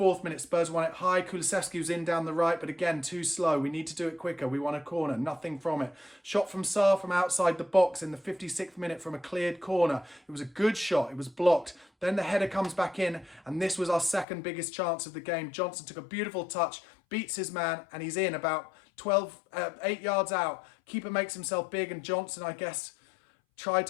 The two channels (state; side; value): drops out; right; at 14.2 s